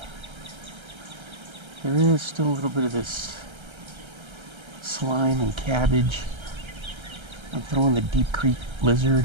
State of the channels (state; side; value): late; left; 1.3 ms